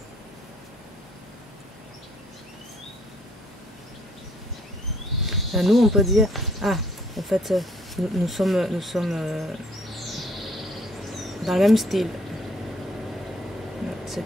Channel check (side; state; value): both; normal; correlation 0.64